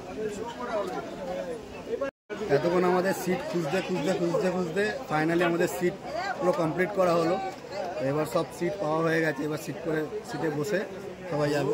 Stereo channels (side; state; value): both; identical; correlation 1.00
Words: এতক্ষণ আমাদের সিট খুঁজতে খুঁজতে খুঁজতে খুঁজতে ফাইনালি আমাদের সিট পুরো কমপ্লিট করা হলো। এবার সব সিট পাওয়া হয়ে গেছে, এবার সিটে বসে সবাই যাবে।